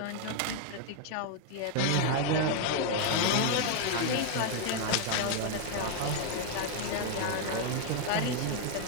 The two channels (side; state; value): both; different; correlation 0.00